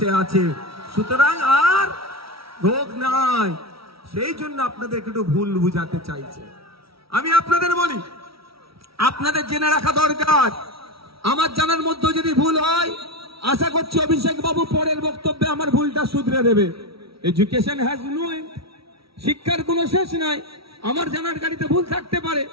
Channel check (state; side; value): late; left; 0.75 ms